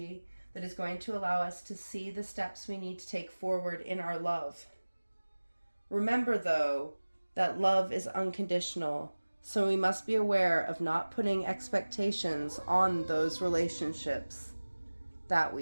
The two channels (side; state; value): both; inverted; correlation -1.00